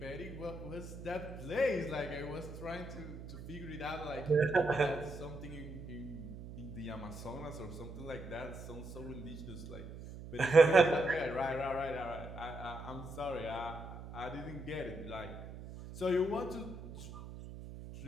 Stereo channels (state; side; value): noise; right; hum, 11 dB below the sound